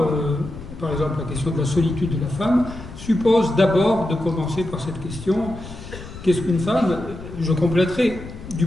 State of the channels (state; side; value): noise; left; rumble, 13 dB below the sound